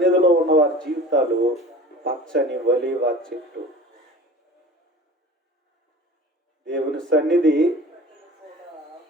ఉన్న వారి జీవితాలు పచ్చని ఒలీవ చెట్టు. దేవుని సన్నిధి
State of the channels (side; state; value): both; normal; correlation 0.40